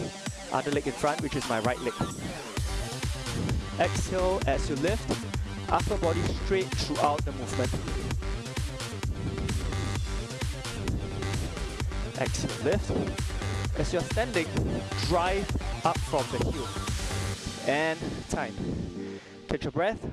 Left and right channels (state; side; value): identical; both; correlation 1.00